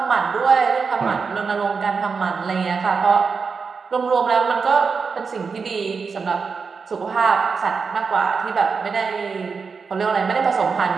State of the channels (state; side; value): quieter; left; 5.2 dB